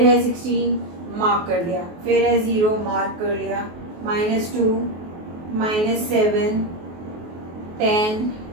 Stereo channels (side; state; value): left; late; 23 ms